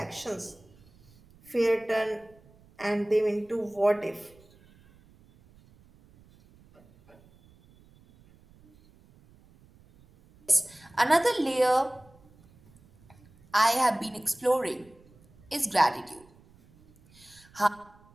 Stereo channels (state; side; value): noise; right; rumble, 28 dB below the sound